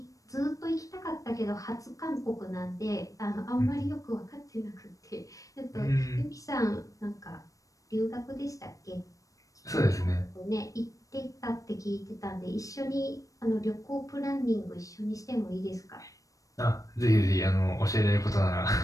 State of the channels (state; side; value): late; right; 0.16 ms